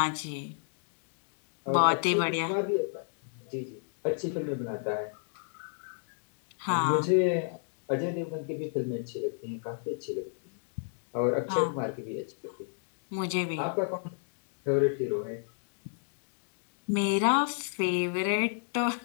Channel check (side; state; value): right; silent; digital silence